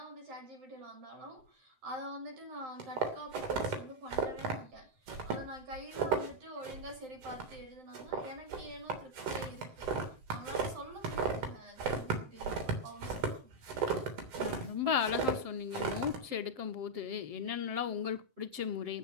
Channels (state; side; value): late; left; 7.7 ms